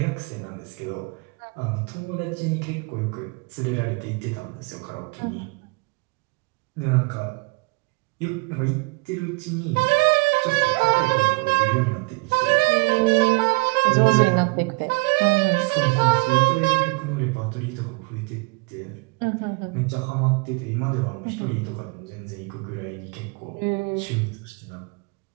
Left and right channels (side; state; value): left; quieter; 28.7 dB